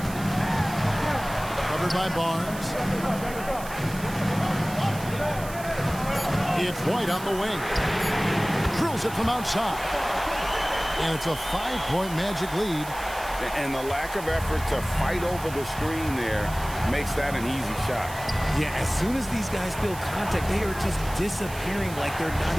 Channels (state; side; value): noise; right; hiss, 14 dB below the sound